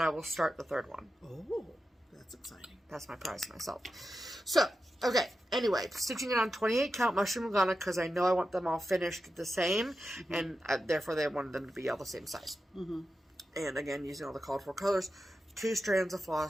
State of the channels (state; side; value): normal; both; correlation 0.91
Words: will start the third one. Oh, that's exciting. That's my prize to myself. So, okay, anyway, stitching it on 28 count mushroom Lugana because I know I want them all finished the same, and therefore they wanted them to be all the same size. And again, using all the called for colors, 2 strands of